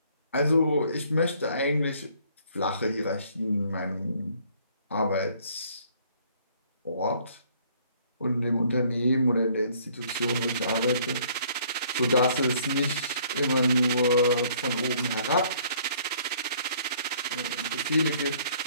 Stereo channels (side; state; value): both; inverted; correlation -0.60